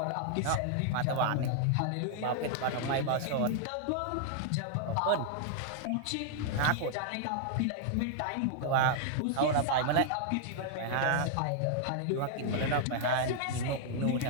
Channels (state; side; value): different; both; correlation -0.01